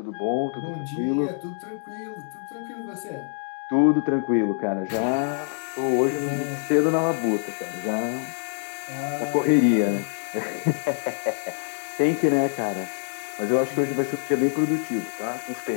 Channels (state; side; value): silent; right; digital silence